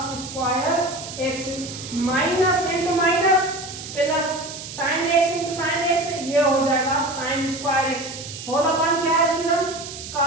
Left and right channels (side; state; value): right; noise; hiss, 11 dB below the sound